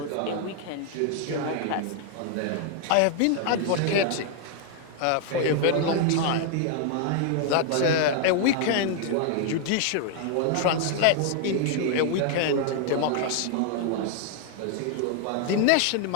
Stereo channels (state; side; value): different; both; correlation 0.00